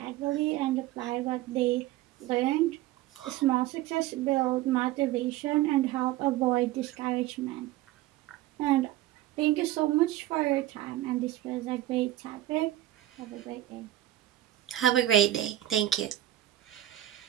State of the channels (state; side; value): quieter; left; 14.4 dB